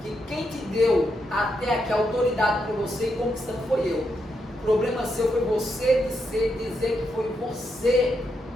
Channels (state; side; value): normal; both; correlation 0.82